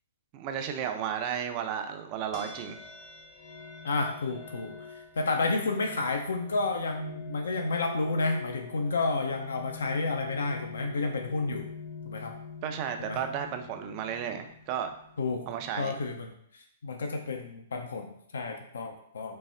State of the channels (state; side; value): inverted; both; correlation -0.59